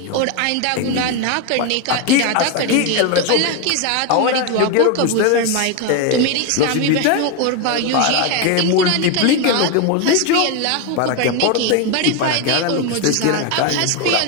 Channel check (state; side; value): different; both; correlation 0.02